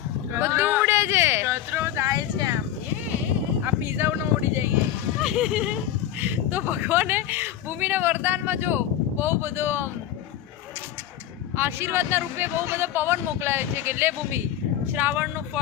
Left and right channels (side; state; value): right; quieter; 11.5 dB